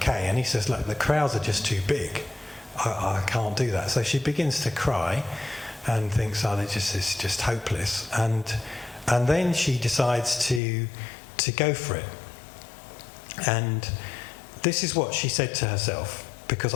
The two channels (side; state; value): right; drops out; at 10.6 s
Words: And he says, look, the crowds are just too big, I can't do that. So she begins to cry and thinks, oh, it's just hopeless. And then she decides to go for it. And this is what she said to herself, because